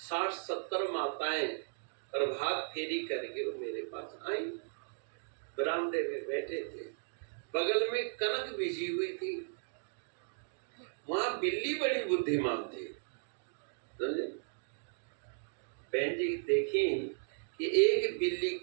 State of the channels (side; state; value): left; silent; digital silence